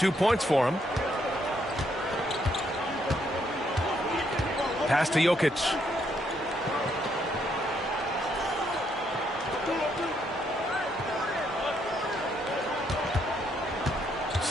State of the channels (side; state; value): both; normal; correlation 0.74